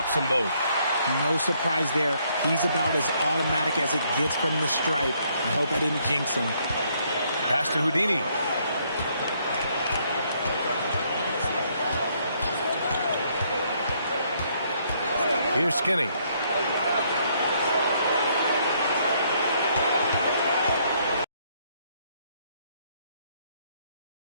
them both. No surprise there. He's about as automatic as it gets from the stripe. I hope I didn't jinx him. Pass to Houdini. Here's Skinny.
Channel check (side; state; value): both; inverted; correlation -0.70